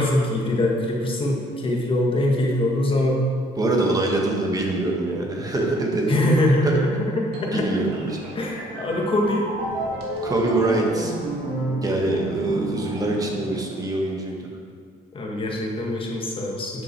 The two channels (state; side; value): normal; both; correlation 0.62